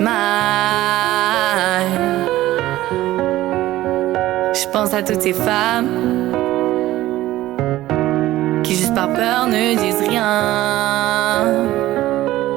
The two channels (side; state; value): left; quieter; 15.7 dB